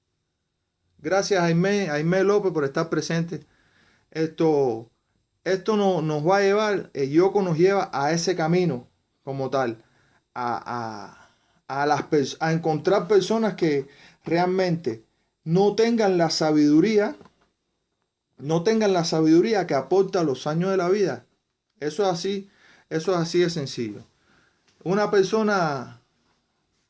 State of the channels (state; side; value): identical; both; correlation 1.00